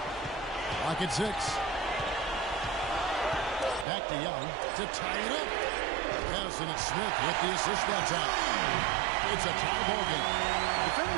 Lock at 6. Back to Young to tie it up. Yes, and it's Smith with the assist that time. It's a tie ball game.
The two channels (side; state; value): left; drops out; at 3.9 s